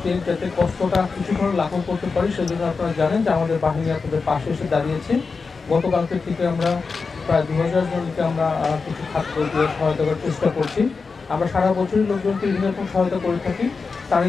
যাতে কষ্টটা কিছুক্ষণ লাঘব করতে পারি সেজন্য আপনারা জানেন যে আমাদের বাহিনী আপনাদের পাশে এসে দাঁড়িয়েছে। গতকালকে থেকে আমরা প্রায় 2000 জনকে আমরা কিছু খাদ্য দিয়ে সহায়তা করার চেষ্টা করছি। আমরা সারা বছরই লোকজনকে বিভিন্ন রকম সহায়তা করে থাকি।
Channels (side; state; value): right; quieter; 4.7 dB